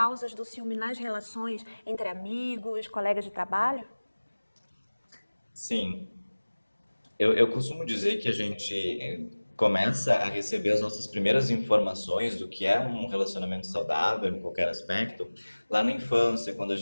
do ciúme nas relações entre amigos, colegas de trabalho? Sim. Eu costumo dizer que a gente começa a receber as nossas primeiras informações do que é um relacionamento saudável em qualquer aspecto lá na infância, quando a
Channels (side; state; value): both; inverted; correlation -1.00